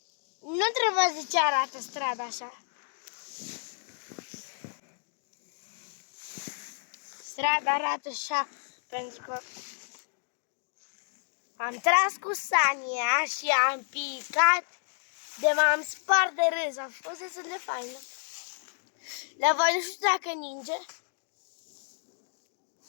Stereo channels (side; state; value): right; silent; digital silence